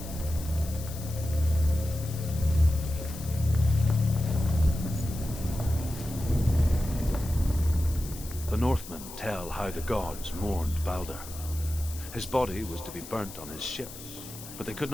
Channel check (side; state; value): left; noise; hiss, 14 dB below the sound